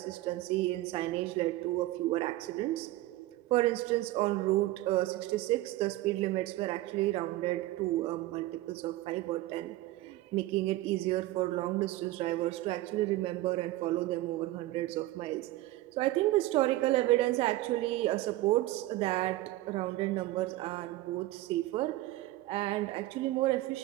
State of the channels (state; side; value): quieter; left; 17.1 dB